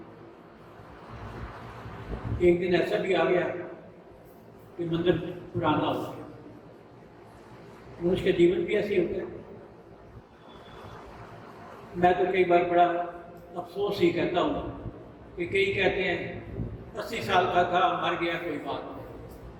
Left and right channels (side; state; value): both; identical; correlation 1.00